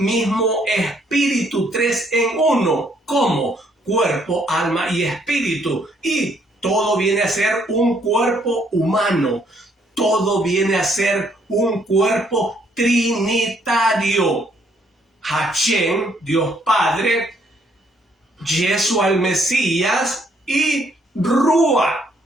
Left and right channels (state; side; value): normal; both; correlation 0.68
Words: mismo espíritu, tres en uno, como cuerpo, alma y espíritu. Y todo viene a ser un cuerpo humano, todo viene a ser un cuerpo trinitario. Hashem, Dios Padre, Yeshua el Mesías y Rúa,